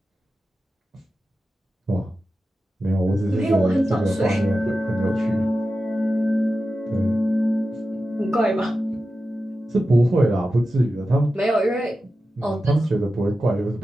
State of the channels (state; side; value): normal; both; correlation 0.92